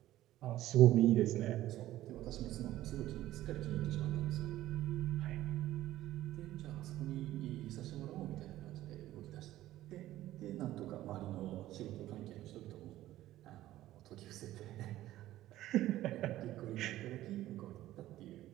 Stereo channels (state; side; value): quieter; left; 14.7 dB